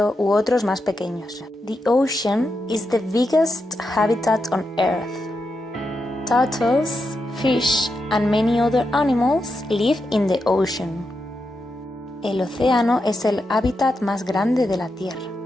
u otros más pequeños. The ocean is the biggest habitat on Earth. Turtles, fish and many other animals live in the ocean. El océano es el hábitat más grande de la Tierra.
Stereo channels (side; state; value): both; normal; correlation 0.86